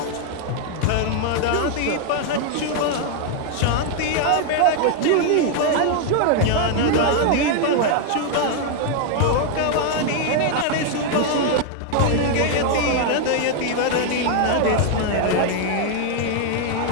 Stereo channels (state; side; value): different; both; correlation 0.00